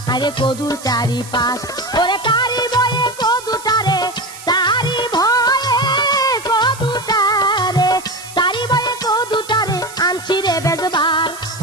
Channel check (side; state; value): right; noise; hiss, 16 dB below the sound